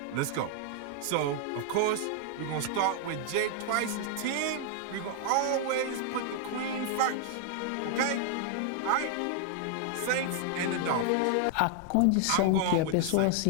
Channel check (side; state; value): both; different; correlation 0.00